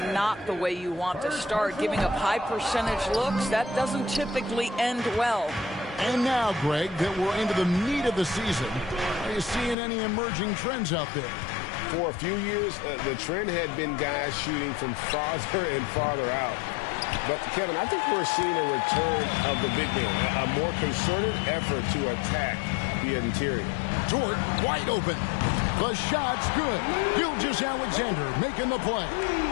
the way you want to start. Giving up high percentage looks, that doesn't typically end well. And now, Greg, that we're into the meat of the season, are you seeing any emerging trends out there? For a few years, the trend had been guys shooting from farther and farther out. But, Kevin, I think we're seeing a return of the big man, a more concerted effort to attack the interior. Dort wide open. The shot's good. Gilgeous-Alexander making the play.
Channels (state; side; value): drops out; right; at 9.8 s